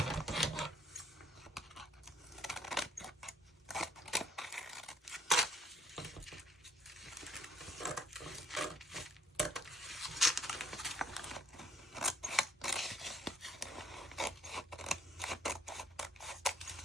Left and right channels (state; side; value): normal; both; correlation 0.59